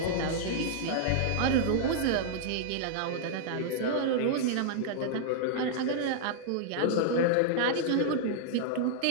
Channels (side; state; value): both; different; correlation -0.02